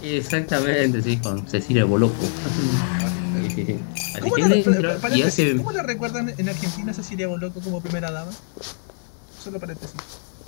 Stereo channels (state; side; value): silent; right; 63 dB below the other